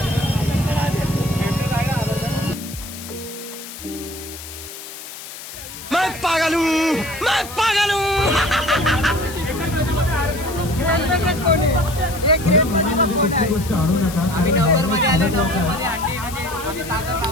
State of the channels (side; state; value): left; noise; hiss, 12 dB below the sound